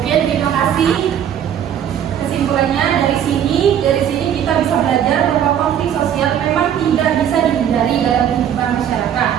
Oke, terima kasih. Kesimpulannya dari sini kita bisa belajar bahwa konflik sosial memang tidak bisa dihindari dalam kehidupan masyarakat.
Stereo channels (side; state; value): left; quieter; 9.5 dB